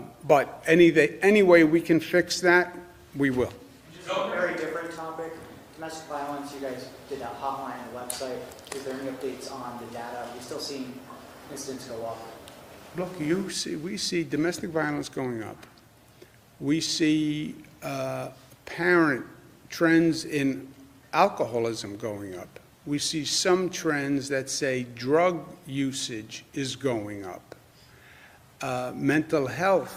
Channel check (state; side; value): identical; both; correlation 1.00